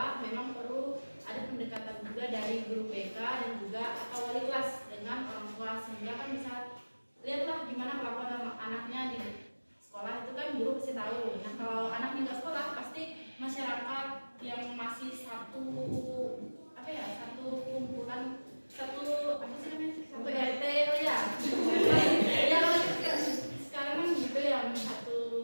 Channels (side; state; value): both; inverted; correlation -1.00